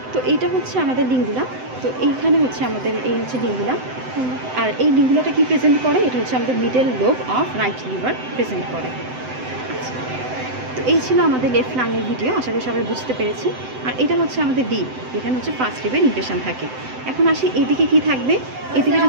তো এইটা হচ্ছে আমাদের লিঙ্গুলা। তো এইখানে হচ্ছে আমাদের এই হচ্ছে লিঙ্গুলা। আর এই লিঙ্গুলাটা কি প্রেজেন্ট করে? এটা হচ্ছে আমাদের middle lobe of right liver present করে। তো এই ছিল আমাদের লেফট লাংয়ের ভিডিও, আশা করি সবাই বুঝতে পেরেছি। আর এটা হচ্ছে আমাদের লিব, এখানে হচ্ছে ফার্স্ট লিভের ইমপ্রেশন থাকে। এখন আসি এদিকে কি থাকবে। এদিকে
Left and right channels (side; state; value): left; late; 7.8 ms